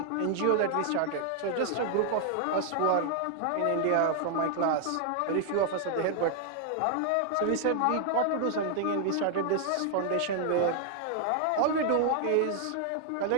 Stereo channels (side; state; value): both; different; correlation 0.00